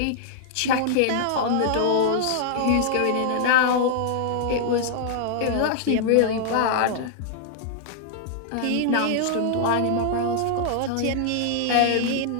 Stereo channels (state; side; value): different; both; correlation -0.01